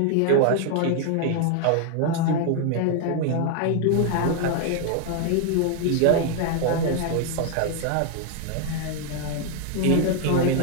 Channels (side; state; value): both; different; correlation 0.00